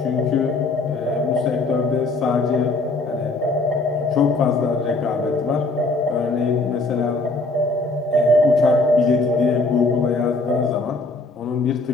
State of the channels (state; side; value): quieter; right; 3.3 dB